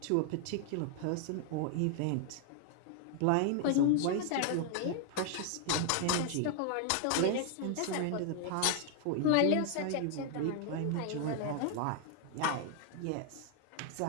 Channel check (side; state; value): both; different; correlation 0.00